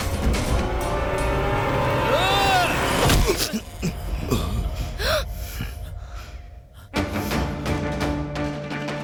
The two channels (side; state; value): both; identical; correlation 1.00